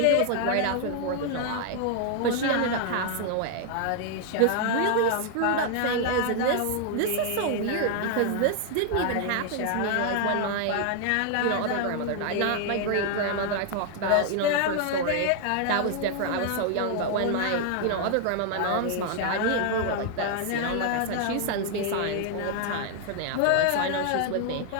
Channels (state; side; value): different; both; correlation 0.00